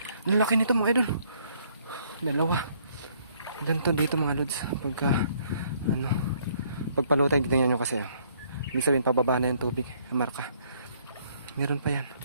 Ang laki nito mga idol. Dalawa. Ganito dito mga lods. Pagka, pagpalutay, tignan nyo kasi. Ibig sabihin, pababa na yung tubig. Marka. Meron pa yan.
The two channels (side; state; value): both; inverted; correlation -0.65